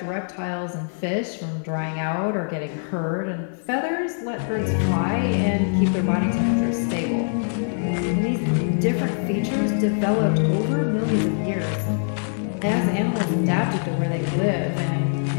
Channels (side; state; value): right; silent; digital silence